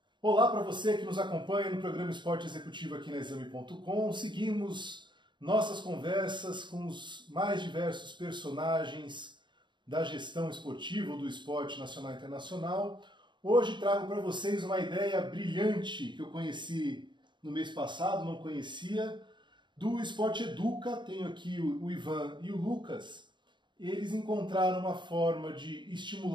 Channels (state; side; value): late; left; 0.23 ms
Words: Olá para você que nos acompanha no programa Esporte Executivo aqui na Exame.com. Seguimos nossas conversas com os mais diversos personagens da gestão esportiva ou do esporte nacional e internacional. Hoje trago para vocês uma ideia brilhante que eu conheci no mês passado, não conhecia, do Esporte Educa. Tenho aqui o Ivan e o Lucas. Eles encontraram uma forma de